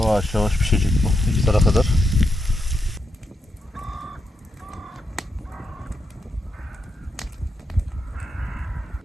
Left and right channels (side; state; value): both; normal; correlation 0.83